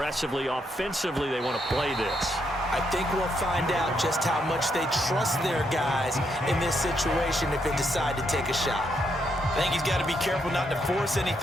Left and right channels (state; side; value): normal; both; correlation 0.77